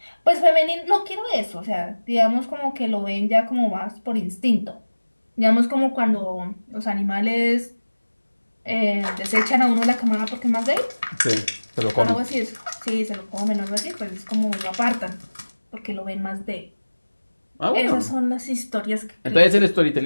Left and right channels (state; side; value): inverted; both; correlation -1.00